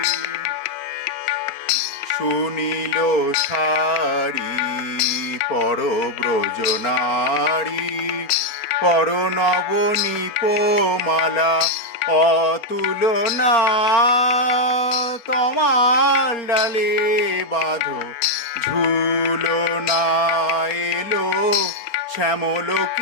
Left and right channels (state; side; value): late; right; 4.3 ms